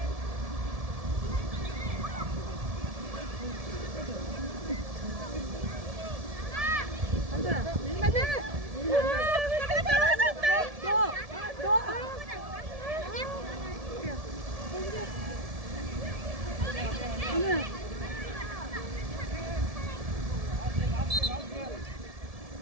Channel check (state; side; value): late; left; 1.7 ms